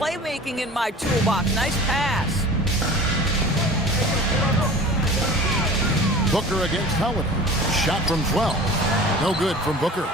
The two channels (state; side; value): normal; both; correlation 0.40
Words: in my toolbox. Nice pass. Booker against Holiday. Shot from 12. No good from Booker.